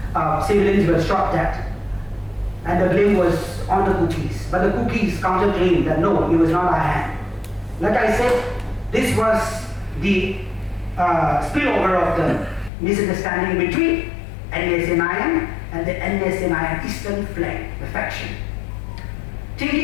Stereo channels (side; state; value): right; drops out; at 12.7 s